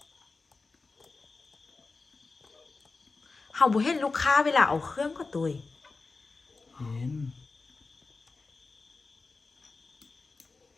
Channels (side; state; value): right; quieter; 4.0 dB